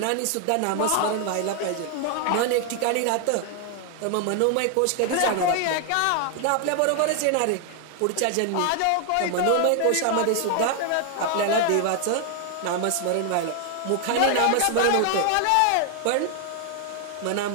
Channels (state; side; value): different; both; correlation 0.00